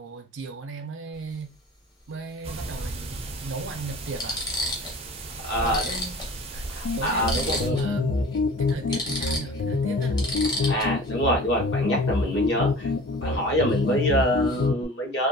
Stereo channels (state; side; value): normal; both; correlation 0.42